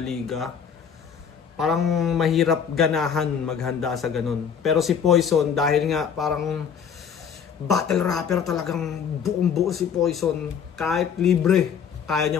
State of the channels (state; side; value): quieter; right; 7.3 dB